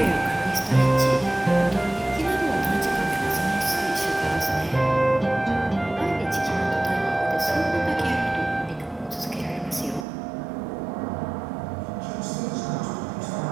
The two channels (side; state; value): left; drops out; at 10.1 s